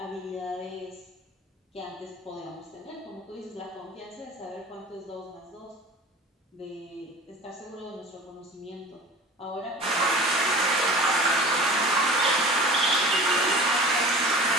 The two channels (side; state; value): both; normal; correlation 0.40